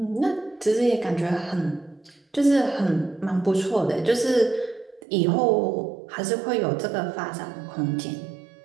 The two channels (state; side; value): drops out; left; at 5.0 s